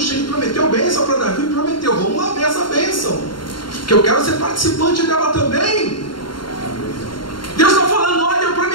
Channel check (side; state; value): right; late; 0.72 ms